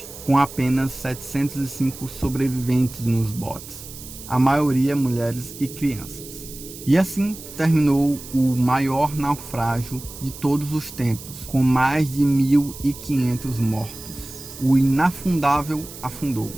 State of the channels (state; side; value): noise; right; hiss, 14 dB below the sound